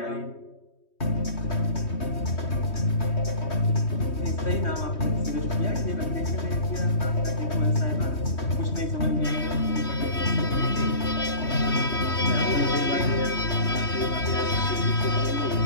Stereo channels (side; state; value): right; late; 3.2 ms